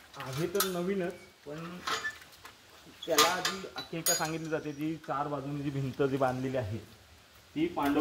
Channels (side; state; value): both; identical; correlation 1.00